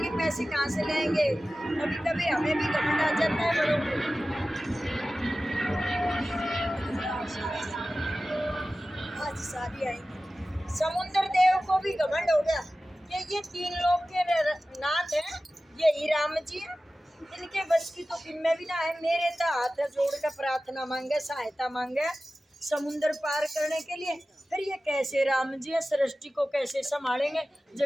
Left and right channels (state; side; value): normal; both; correlation 0.96